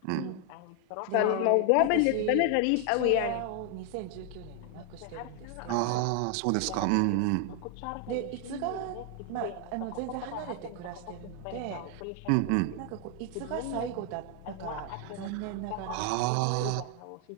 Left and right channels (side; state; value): both; different; correlation 0.00